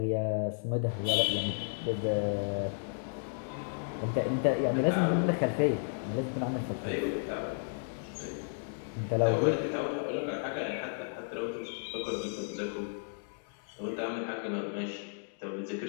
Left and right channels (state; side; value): silent; right; digital silence